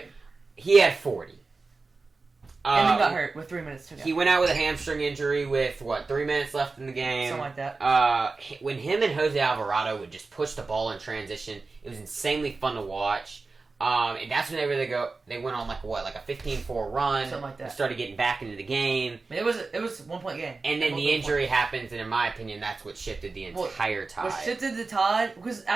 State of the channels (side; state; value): left; quieter; 3.9 dB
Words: He had 40. And then got hurt with 3 minutes to go. He went out with a hamstring injury with, 3 minutes left in the game? Something like that. When him and Jose Alvarado would just push the ball in transition, it was insanely fun to watch. And that's when they went on like a 15-4 run. Something like that. Started getting back into the game. I mean, it was a 1-point game. And then the injury happens, and in my opinion, that's what shifted the entire tide. What shifted the tide, because